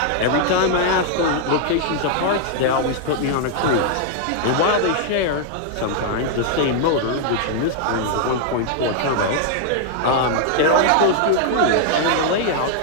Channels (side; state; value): both; different; correlation -0.01